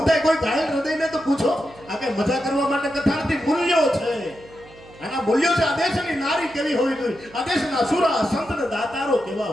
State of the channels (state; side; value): noise; right; hum, 23 dB below the sound